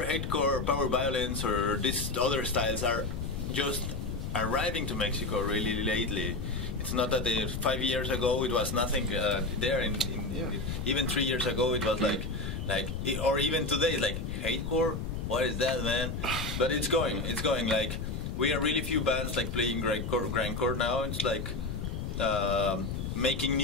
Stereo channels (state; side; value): noise; left; rumble, 4 dB below the sound